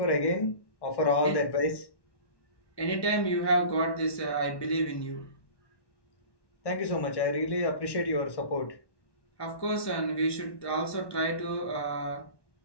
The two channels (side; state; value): right; late; 1.1 ms